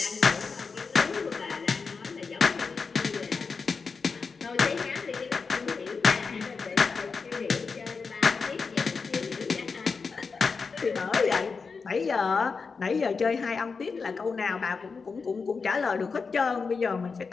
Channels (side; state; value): right; quieter; 4.9 dB